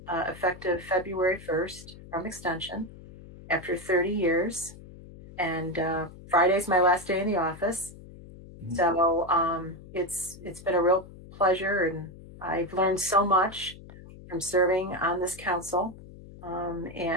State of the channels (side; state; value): left; noise; hum, 17 dB below the sound